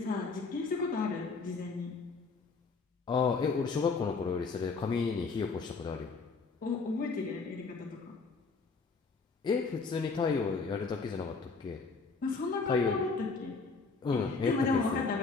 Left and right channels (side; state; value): right; quieter; 4.4 dB